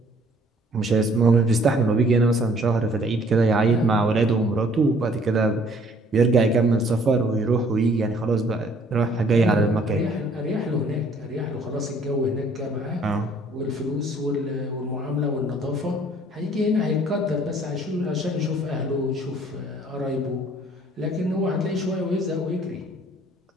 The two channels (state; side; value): normal; both; correlation 0.58